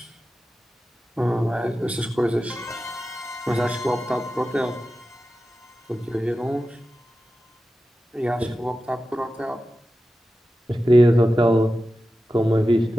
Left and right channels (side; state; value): both; normal; correlation 0.93